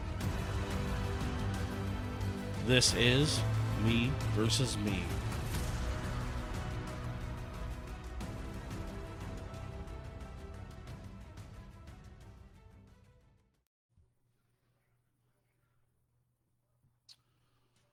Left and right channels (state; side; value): identical; both; correlation 1.00